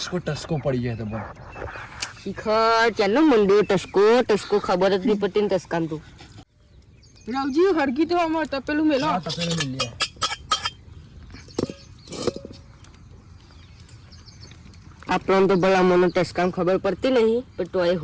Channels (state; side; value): identical; both; correlation 1.00